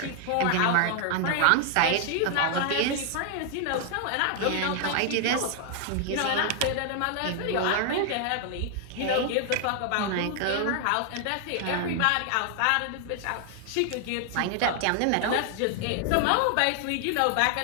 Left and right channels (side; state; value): both; different; correlation 0.00